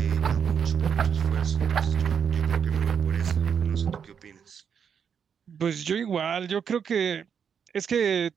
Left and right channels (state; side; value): quieter; left; 7.3 dB